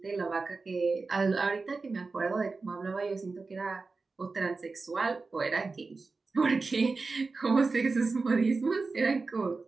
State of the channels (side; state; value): left; quieter; 4.0 dB